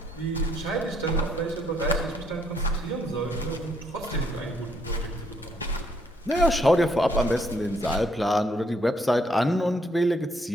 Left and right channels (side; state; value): both; normal; correlation 0.70